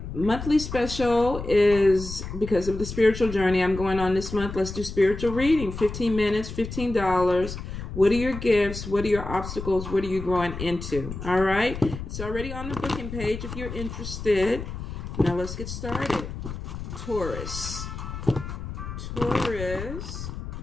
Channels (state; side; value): noise; left; rumble, 8 dB below the sound